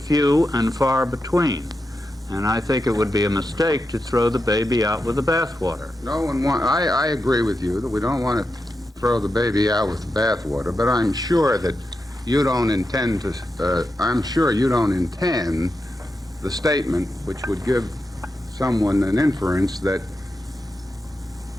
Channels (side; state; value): both; normal; correlation 0.88